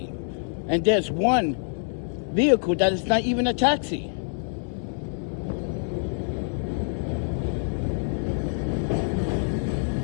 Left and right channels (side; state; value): right; silent; 60 dB below the other